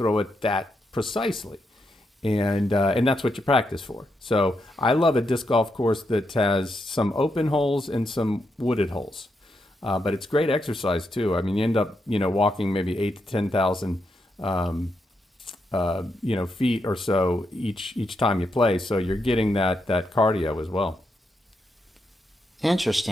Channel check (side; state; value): both; normal; correlation 0.82